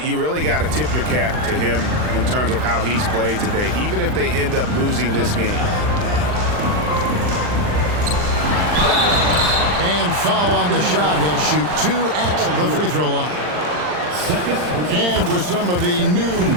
You really got to tip your cap to him in terms of how he's played today, even if they end up losing this game. And foul on the shot. He'll shoot 2 at the free throw line. And with some of the new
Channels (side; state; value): left; late; 39 ms